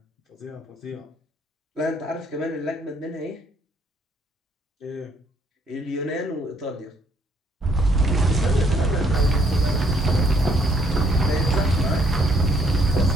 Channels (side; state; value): both; normal; correlation 0.67